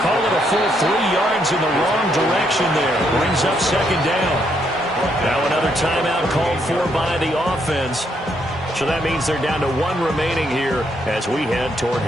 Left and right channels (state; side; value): normal; both; correlation 0.74